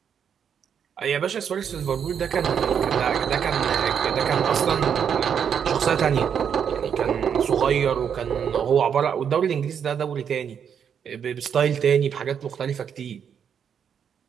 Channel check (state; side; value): quieter; left; 7.8 dB